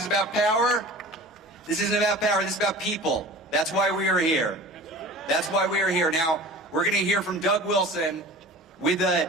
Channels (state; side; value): normal; both; correlation 0.39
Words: about power. This isn't about power, this is about people. That's why we are here. That's why we are here. Now, we're going to hear from Doug Wilson with